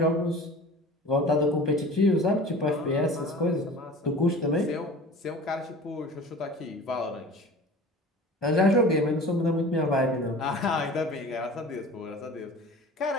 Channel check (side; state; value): both; normal; correlation 0.40